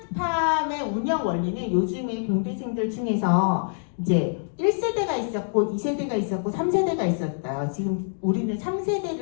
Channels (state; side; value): silent; right; digital silence